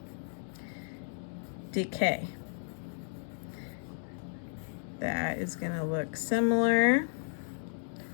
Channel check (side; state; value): right; silent; 55 dB below the other